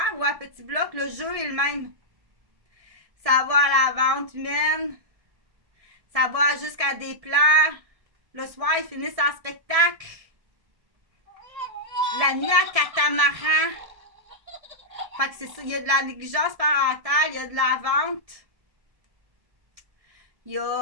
ou un petit bloc, le jeu est le même. Ça va à la vente humaine. Ça va jusqu'à des plans. Le soir, ils finissent en spectacle. La nuit à catamaran. Fait que c'est ça. Il y a de la négligence parentale, il y a de la vente. Il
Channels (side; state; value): left; late; 1.6 ms